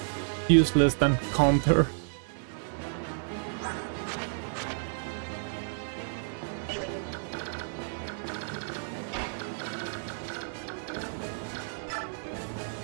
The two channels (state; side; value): silent; left; digital silence